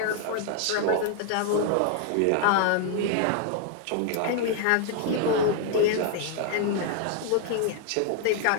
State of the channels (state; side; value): different; both; correlation 0.00